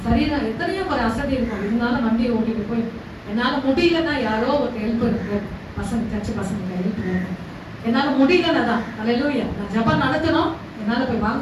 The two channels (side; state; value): both; identical; correlation 1.00